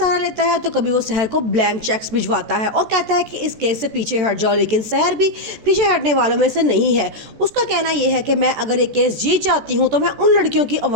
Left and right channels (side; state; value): left; late; 14 ms